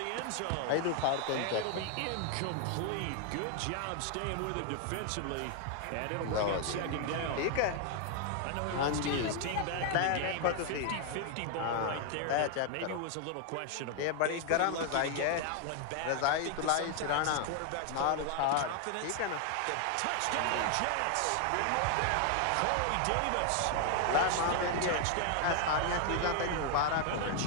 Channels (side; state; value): both; different; correlation 0.00